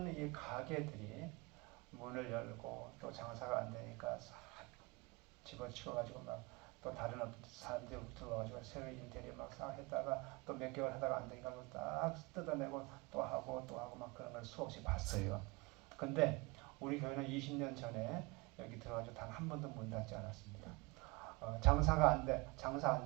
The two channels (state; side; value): quieter; left; 25.4 dB